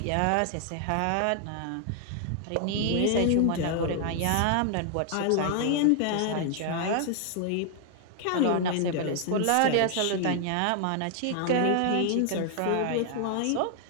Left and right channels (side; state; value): both; different; correlation 0.00